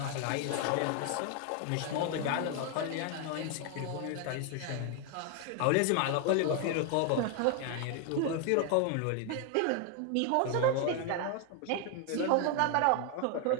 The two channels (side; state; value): both; different; correlation 0.00